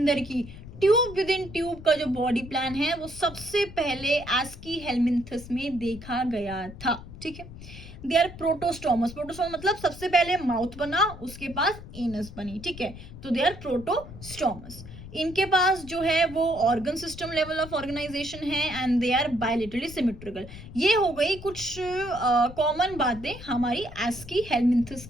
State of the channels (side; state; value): left; noise; rumble, 14 dB below the sound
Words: की। ट्यूब विद इन ट्यूब का जो बॉडी प्लान है वो सबसे पहले एस्कीहेलमिंथस में देखा गया था। ठीक है, दे आर प्रोटोस्टोमस, प्रोटोस्टोमस मतलब सबसे पहले माउथ बना उसके पास एनस बनी। ठीक है, तो दे आर प्रोटोस्टोमस। इनके पास जो है वो organ system level of organisation है and they are bilaterally symmetrical. ये हो गई कुछ कॉमन बातें हमारी एस्कीहेलमिंथस